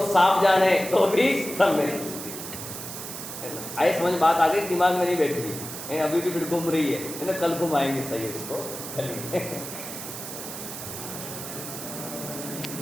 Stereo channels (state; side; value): noise; right; hiss, 9 dB below the sound